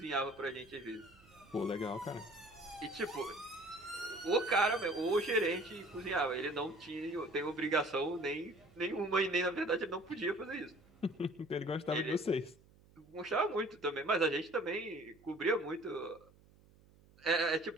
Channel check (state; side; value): noise; right; hum, 27 dB below the sound